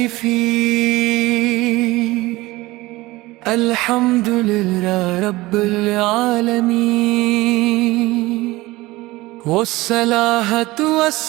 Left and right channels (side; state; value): left; quieter; 19.7 dB